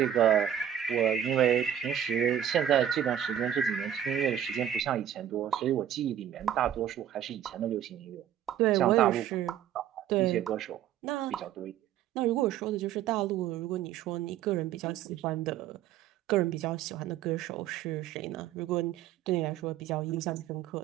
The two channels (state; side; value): quieter; left; 10.2 dB